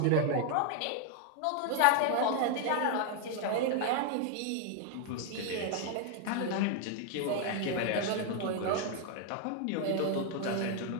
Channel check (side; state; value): both; different; correlation 0.00